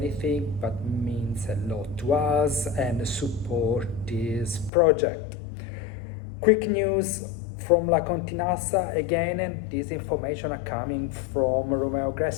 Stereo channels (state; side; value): drops out; right; at 4.7 s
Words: but means a lot to us and support this project. Quick news from La Continassa again, and this information are coming from Romeo